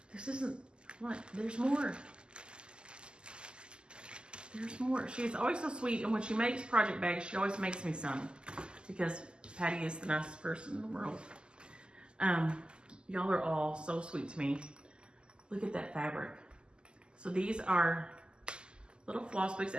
this isn't, what, there's more. There's more. She's always so sweet, and when she makes project bags, she always makes me some because Patty is the nicest person in the world. Y'all are all so sweet to me. Look at that fabric. So these are little floss books,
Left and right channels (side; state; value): left; late; 0.049 ms